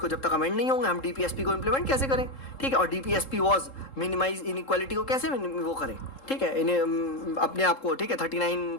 जब तक अमेंड नहीं होंगे हम डीपीएसपी को इम्प्लीमेंट कैसे करें, ठीक है, और डीपीएसपी वाज मिनिमाइज इनइक्वालिटी को कैसे वो करें, ठीक है, इन्हें अपने आप को, ठीक है,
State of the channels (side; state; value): right; late; 3.7 ms